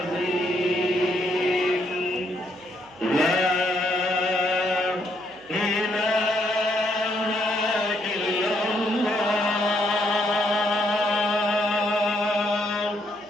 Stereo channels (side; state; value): right; noise; hum, 28 dB below the sound